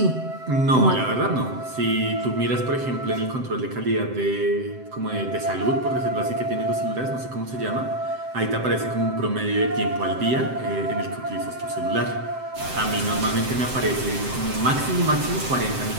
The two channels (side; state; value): left; late; 7.7 ms